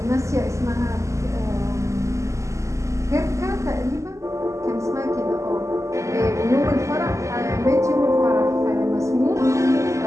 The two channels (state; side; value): late; left; 0.15 ms